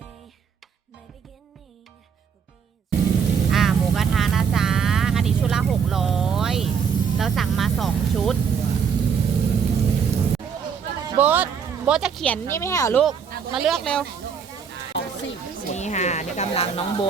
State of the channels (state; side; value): quieter; left; 6.7 dB